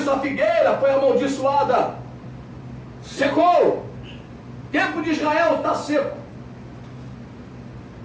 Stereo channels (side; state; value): both; identical; correlation 1.00